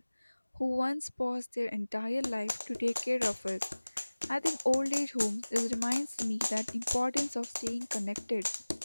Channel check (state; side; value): inverted; both; correlation -1.00